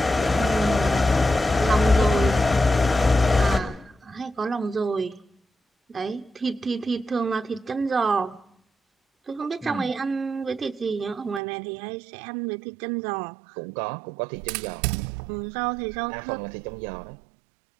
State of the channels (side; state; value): left; drops out; at 11.4 s